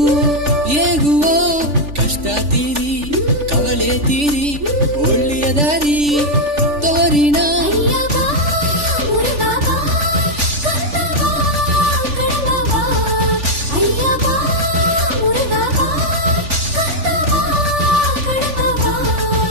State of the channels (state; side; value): late; left; 3.4 ms